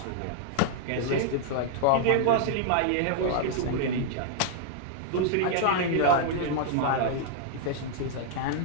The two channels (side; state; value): both; different; correlation -0.01